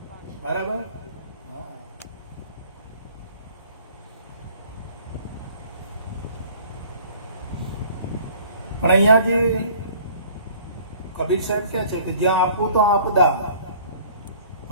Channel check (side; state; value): both; inverted; correlation -0.52